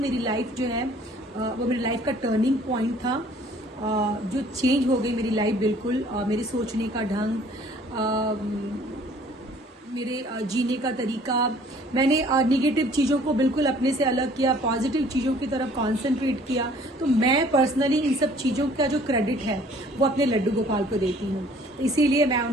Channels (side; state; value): both; normal; correlation 0.55